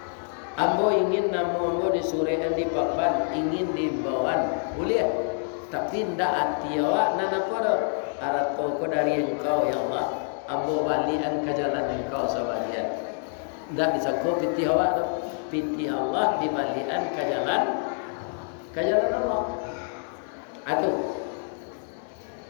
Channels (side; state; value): right; silent; 59 dB below the other